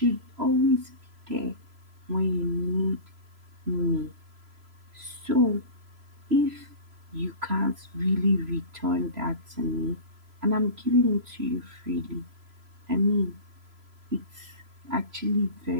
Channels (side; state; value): left; late; 3.0 ms